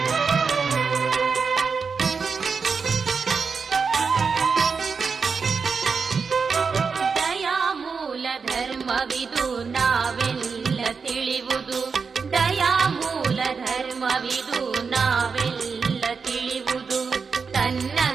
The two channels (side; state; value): left; quieter; 5.3 dB